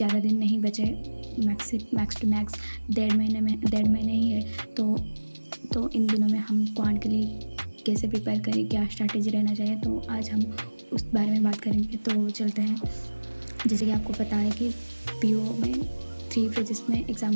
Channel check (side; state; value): both; inverted; correlation -1.00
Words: दिन नहीं बचे। मैक्स टू मैक्स डेढ़ महीने ही है। तो इन दिनों में हम क्वांट के लिए कैसे प्रिपेयर करें, क्या स्ट्रैटेजी रहना चाहिए, तो आज हम उस बारे में बात करेंगे। तो चलते हैं। जैसे कि आपको पता है कि पीओ में 3 फेजेस में एग्ज़ाम